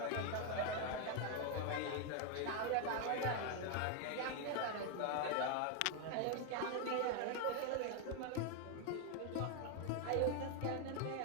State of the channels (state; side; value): different; both; correlation 0.01